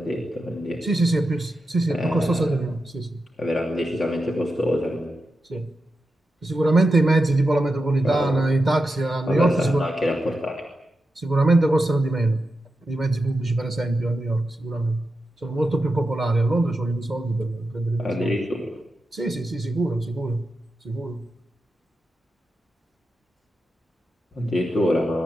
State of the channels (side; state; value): both; normal; correlation 0.89